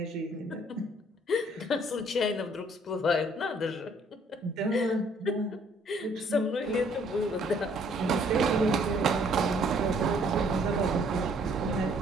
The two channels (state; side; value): normal; both; correlation 0.62